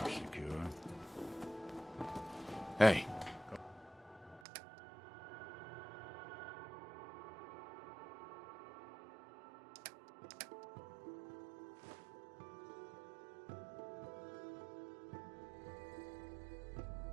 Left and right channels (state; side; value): drops out; left; at 4.4 s